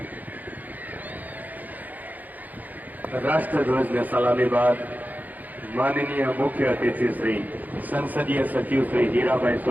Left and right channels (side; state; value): left; late; 0.082 ms